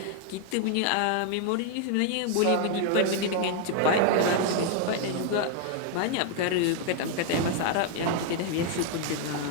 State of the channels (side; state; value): both; different; correlation 0.00